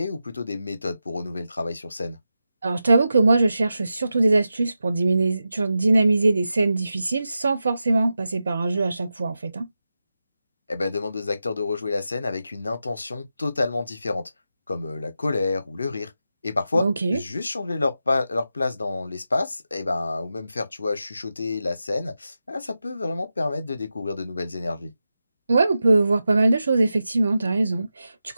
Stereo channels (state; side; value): inverted; both; correlation -0.90